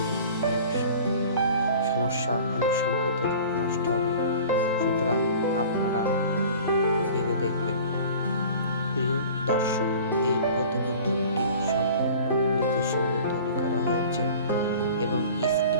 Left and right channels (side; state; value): both; inverted; correlation -0.43